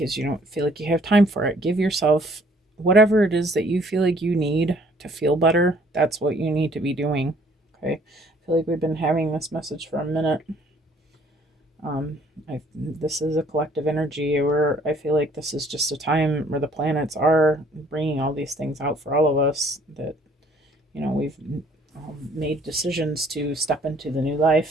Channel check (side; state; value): both; normal; correlation 0.60